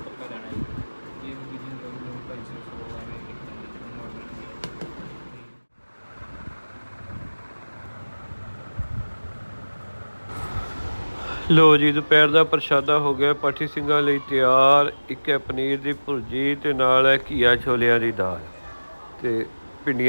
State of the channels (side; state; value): both; inverted; correlation -1.00